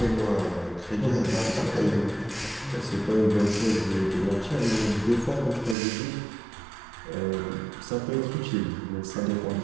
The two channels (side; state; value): left; drops out; at 5.8 s